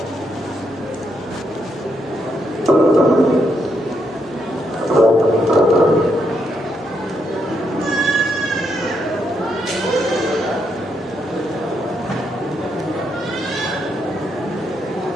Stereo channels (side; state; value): both; normal; correlation 0.78